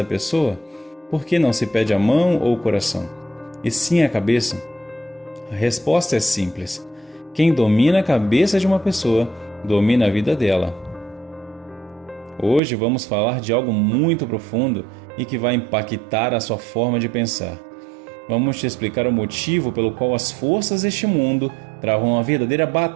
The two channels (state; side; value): drops out; left; at 12.6 s